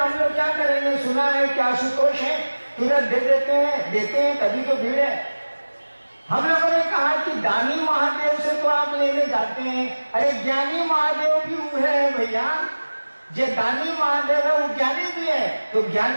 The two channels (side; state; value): both; inverted; correlation -1.00